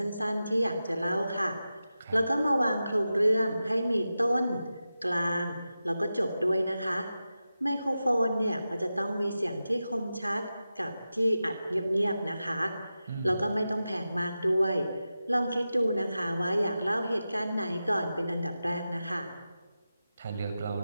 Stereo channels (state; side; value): inverted; both; correlation -0.92